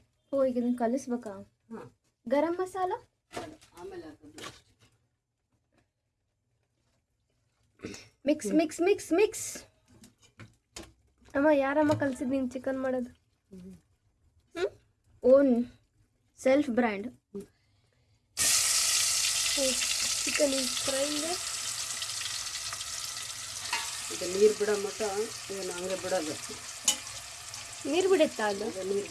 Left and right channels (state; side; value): identical; both; correlation 1.00